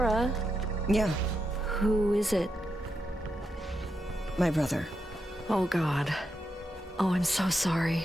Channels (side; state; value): both; normal; correlation 0.84